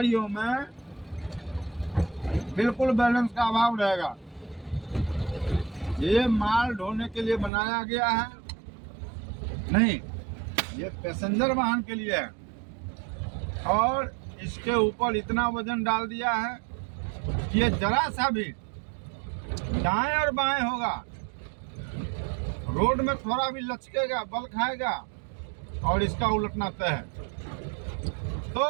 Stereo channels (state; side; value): drops out; left; at 7.5 s